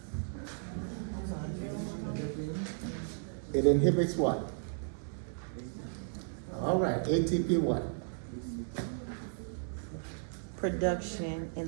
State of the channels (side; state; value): left; silent; 55 dB below the other